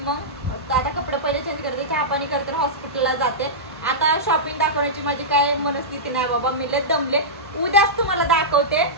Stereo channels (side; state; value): both; normal; correlation -0.14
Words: मग आता कपडे पहिले चेंज करते, चहा पाणी करते, हॉस्पिटलला जाते. आता शॉपिंग दाखवण्याची माझी काय मनस्थिती नाही बाबा, मी लय दमले. उद्याच तुम्हाला दाखवते